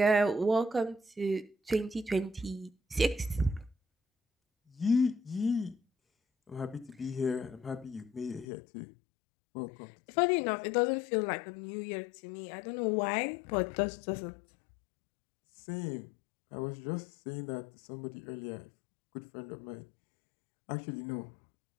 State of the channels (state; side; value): drops out; right; at 8.5 s